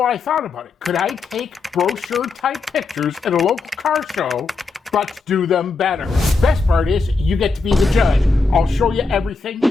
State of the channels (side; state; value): right; quieter; 4.0 dB